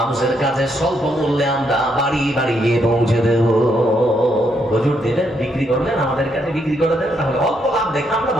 কাছে স্বল্প মূল্যে আমরা বাড়ি বাড়ি গিয়ে পৌঁছে দেব। হুজুর দিলেন, বিক্রি করলেন, আমাদের কাছে বিক্রি করে দেন, তাহলে অল্প লাভ দেখে আমরা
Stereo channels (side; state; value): both; normal; correlation 0.76